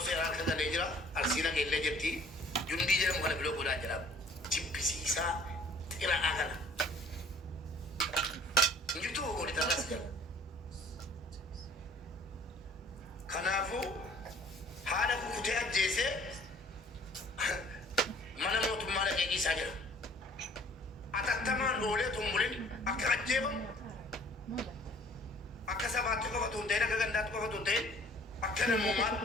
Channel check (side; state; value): both; normal; correlation 0.54